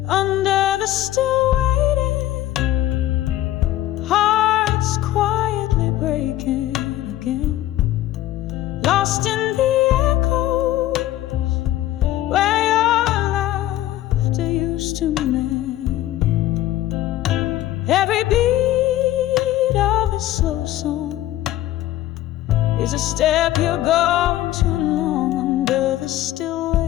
Under the still waiting, hearts quietly breaking again, lost in the echoes where your laughter used to mend. Every beat of a slow song is a step you're gone too long. Under the still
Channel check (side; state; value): right; quieter; 14.1 dB